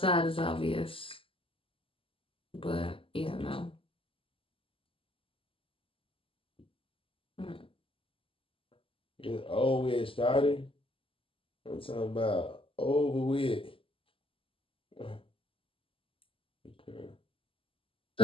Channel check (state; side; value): late; right; 0.26 ms